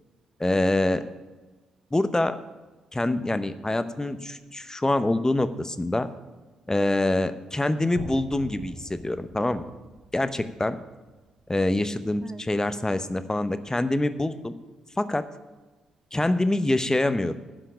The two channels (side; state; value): both; normal; correlation 0.96